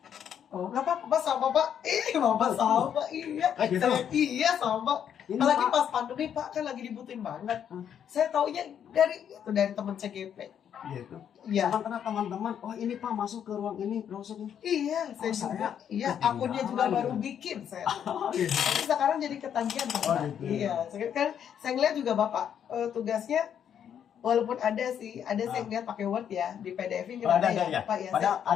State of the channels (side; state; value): right; quieter; 8.9 dB